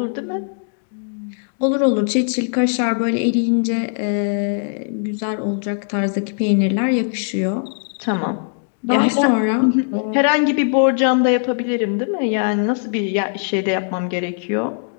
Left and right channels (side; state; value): right; silent; digital silence